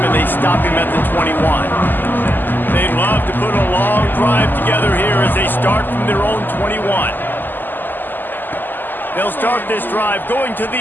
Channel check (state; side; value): late; right; 0.090 ms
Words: and they stop him at the 21. They'd love to put a long drive together here as they start from their own 21. They'll start this drive going to